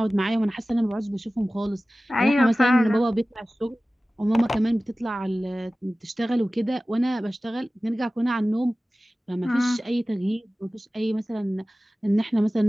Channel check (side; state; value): both; normal; correlation 0.97